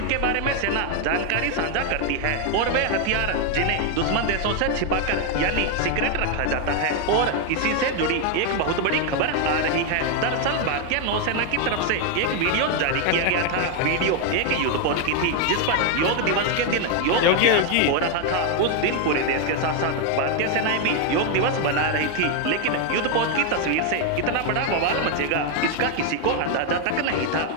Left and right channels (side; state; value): both; different; correlation 0.01